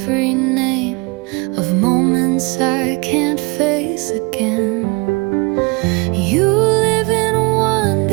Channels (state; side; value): quieter; left; 27.7 dB